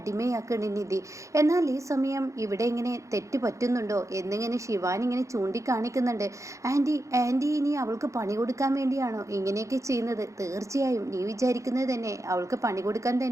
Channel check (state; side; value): late; left; 0.15 ms